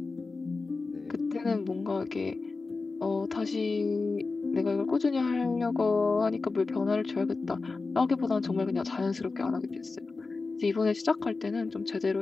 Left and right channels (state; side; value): quieter; right; 3.9 dB